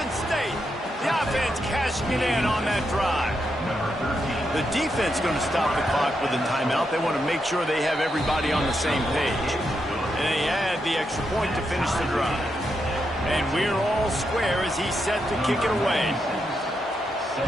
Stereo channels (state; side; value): normal; both; correlation 0.83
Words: State. The offense cashing it in on that drive. The defense going to stop the clock with a timeout. They want to make sure they have everybody on the same page. And they add the extra point to finish the drive. And we're all square as he's set to kick it away.